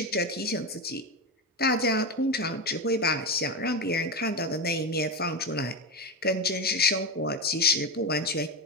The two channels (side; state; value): both; normal; correlation 0.16